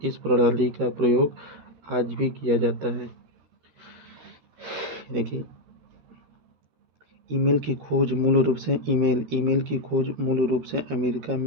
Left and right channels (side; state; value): left; late; 13 ms